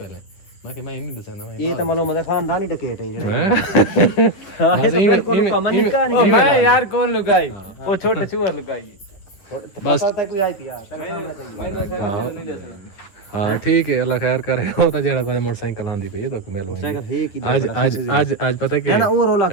मैं के मैं नहीं दसना मैं ये तो मालूम है खानदानी डकैत है जेड़े बस मैं यार कौन लुकाई वो छोटे चूहा लुकाई बस पता कोई आई थी यार तेरे सामने चाहिए हाँ ठीक है अल्लाह खैर करे हो तो जेड़ा कोई मोटरसाइकिल आंदी पे तो मिल साइकिल है कि आज पता क्या ना वो रोला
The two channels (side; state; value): right; late; 9.9 ms